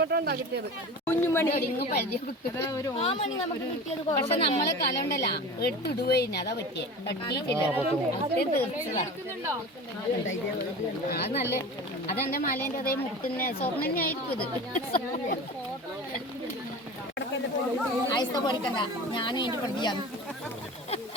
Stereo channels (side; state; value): both; normal; correlation 0.34